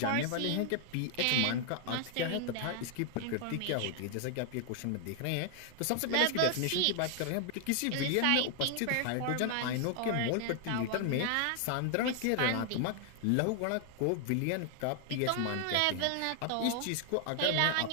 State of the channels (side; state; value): both; different; correlation 0.00